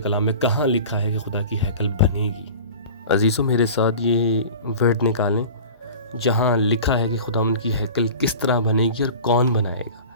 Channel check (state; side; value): inverted; both; correlation -0.37